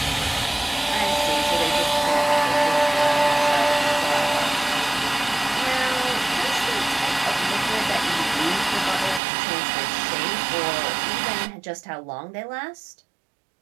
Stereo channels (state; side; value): drops out; left; at 9.2 s